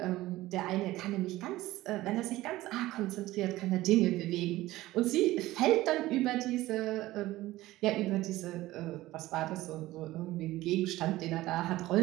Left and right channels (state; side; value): quieter; left; 17.0 dB